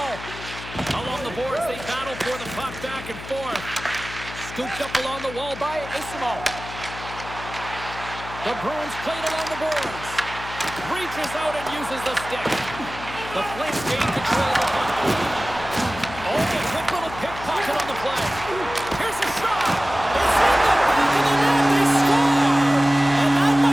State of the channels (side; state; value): left; noise; hum, 12 dB below the sound